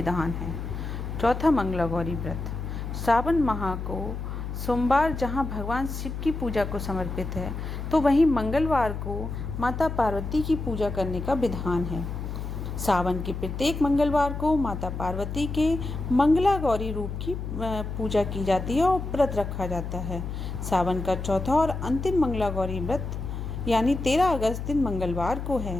है। चौथा मंगला गौरी व्रत सावन माह को सोमवार जहां भगवान शिव की पूजा को समर्पित है, तो वहीं मंगलवार को माता पार्वती की पूजा करने का विधान है। सावन के प्रत्येक मंगलवार को माता पार्वती के मंगला गौरी रूप की पूजा की जाती है और व्रत रखा जाता है। सावन का चौथा और अंतिम मंगला गौरी व्रत यानी 13 अगस्त दिन मंगलवार को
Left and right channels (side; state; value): left; noise; hum, 6 dB below the sound